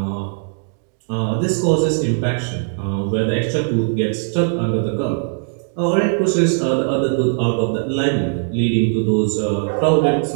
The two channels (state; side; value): silent; left; digital silence